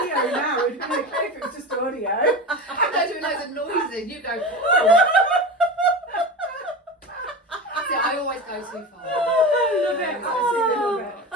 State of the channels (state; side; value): normal; both; correlation 0.27